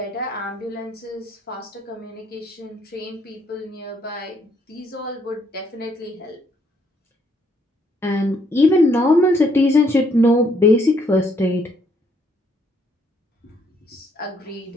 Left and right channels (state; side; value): normal; both; correlation 0.69